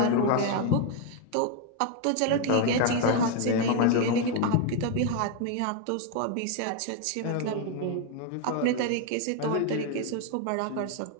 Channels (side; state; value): both; different; correlation 0.01